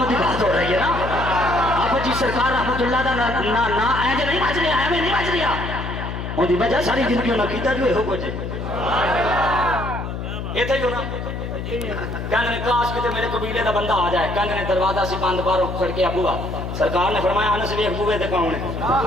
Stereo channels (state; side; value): noise; left; hum, 5 dB below the sound